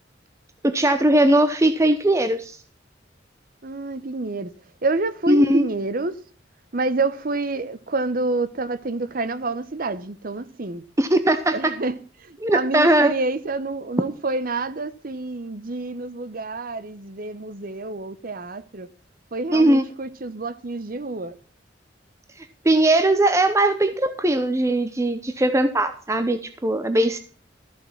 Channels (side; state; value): both; normal; correlation 0.57